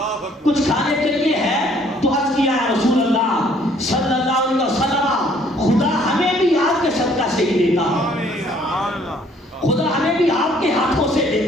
کچھ کھانے کے لیے ہے؟ تو عرض کیا ہے رسول اللہ صلی اللہ علیہ وسلم خدا ہمیں بھی آپ کے صدقہ سے ہی دیتا ہے، خدا ہمیں بھی آپ کے ہاتھوں سے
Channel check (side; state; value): both; normal; correlation 0.61